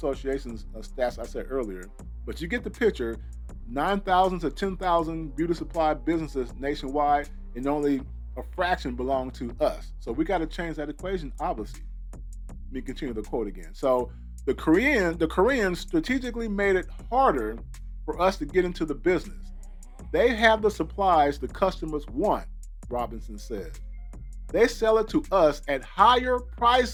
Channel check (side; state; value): both; identical; correlation 1.00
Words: stats I said earlier. But you get the picture, 9,000 to 10,000 beauty supply businesses nationwide, and only a fraction belong to us. So we got to change that equation, obviously. Let me continue the quote again. So the Koreans strategically made it harder for us to get into the business. They have the supplies the customers want, Robinson said. They sell it to us at higher